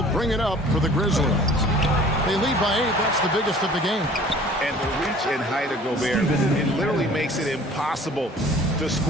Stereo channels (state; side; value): normal; both; correlation 0.49